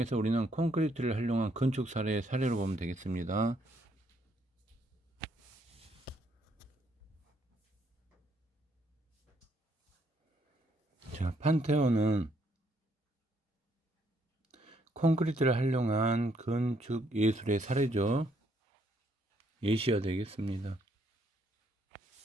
우리는 콘크리트를 활용한 건축 사례의 사례로 보면 되겠습니다. 자, 판테온은 콘크리트를 활용한 건축 예술의 사례죠. 예시가 되겠습니다.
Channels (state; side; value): normal; both; correlation 0.71